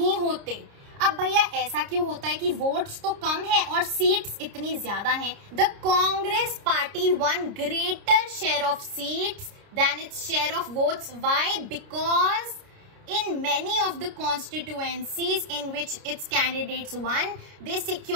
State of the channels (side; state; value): left; late; 29 ms